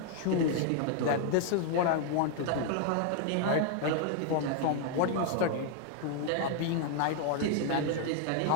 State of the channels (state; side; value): different; both; correlation 0.00